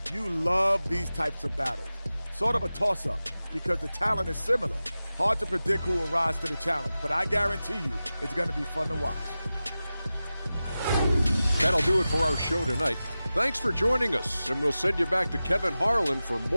you love these types of battles. Sort of a toss-up because the talent is similar. Hard to predict who will rise to the challenge, but I guarantee you it's going to be fun to watch. That'll do it for our show tonight. Thanks for joining us, and we'll send you back to Kevin Harlan for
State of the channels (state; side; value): inverted; both; correlation -0.95